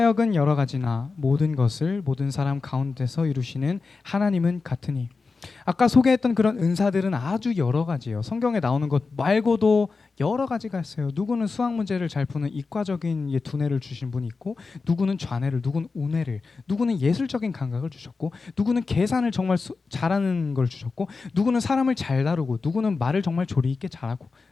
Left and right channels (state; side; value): quieter; right; 4.3 dB